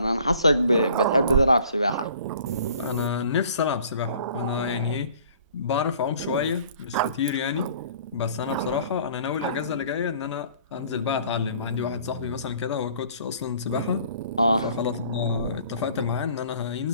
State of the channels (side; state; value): both; inverted; correlation -0.52